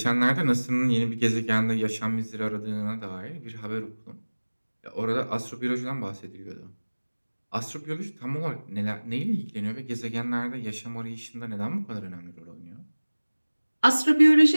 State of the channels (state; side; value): inverted; both; correlation -1.00